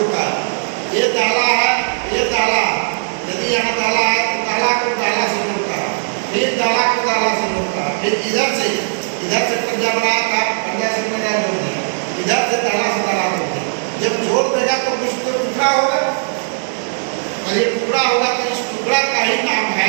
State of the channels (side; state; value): left; silent; digital silence